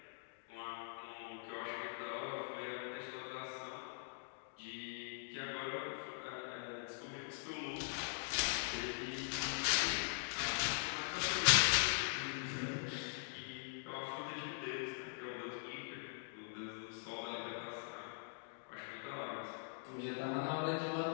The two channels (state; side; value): silent; right; digital silence